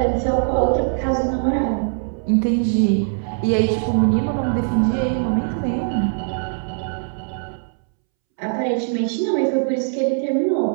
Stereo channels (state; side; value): silent; left; 65 dB below the other